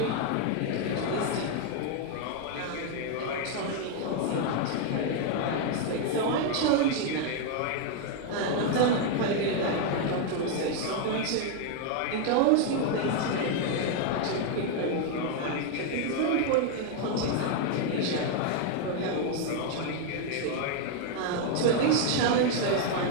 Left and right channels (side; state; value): both; different; correlation 0.00